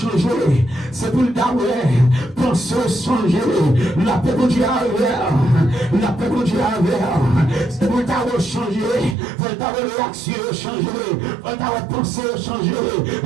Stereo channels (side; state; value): left; drops out; at 9.2 s